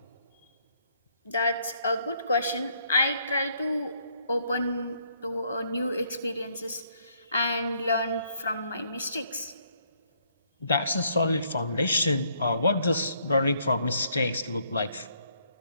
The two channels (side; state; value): both; inverted; correlation -0.70